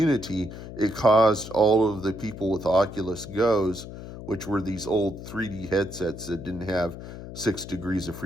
it caused all of the people with Oculus Go's, which were these old 3D headsets that didn't have 6 degrees of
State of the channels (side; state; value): left; noise; hum, 11 dB below the sound